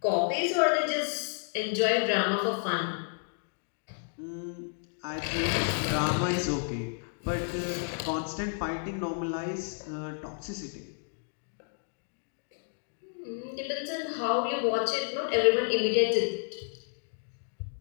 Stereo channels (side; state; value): right; silent; digital silence